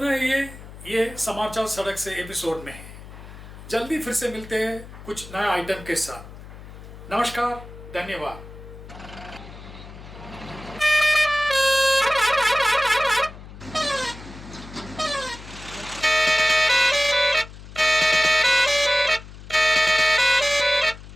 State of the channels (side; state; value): left; noise; hum, 16 dB below the sound